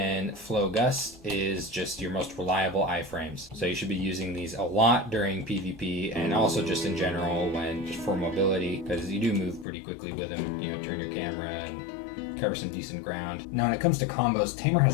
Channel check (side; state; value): right; drops out; at 9.7 s